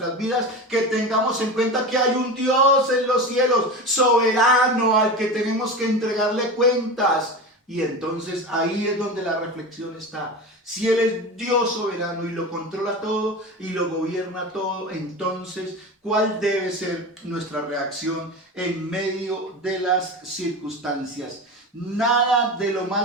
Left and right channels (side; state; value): both; normal; correlation 0.26